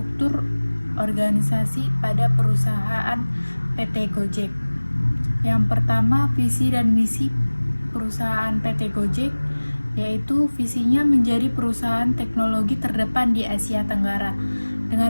organisasi pada perusahaan PT Gojek. Yang pertama, visi dan misi perusahaan PT Gojek, yaitu visinya menjadi perusahaan teknologi terdepan di Asia Tenggara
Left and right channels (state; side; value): inverted; both; correlation -1.00